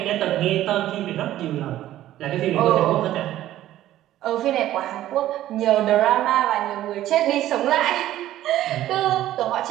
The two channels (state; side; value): quieter; left; 13.6 dB